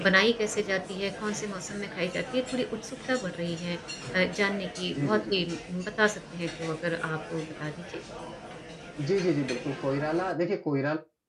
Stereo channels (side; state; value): both; identical; correlation 1.00